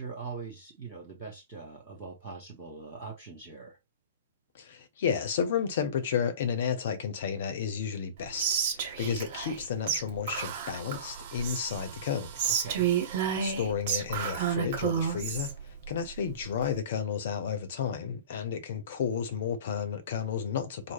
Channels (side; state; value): both; inverted; correlation -0.36